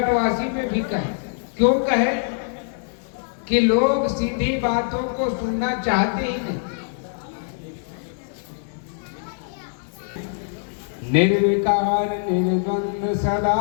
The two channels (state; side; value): silent; right; digital silence